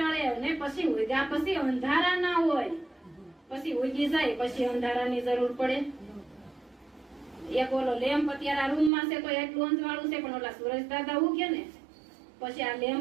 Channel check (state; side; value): drops out; left; at 8.9 s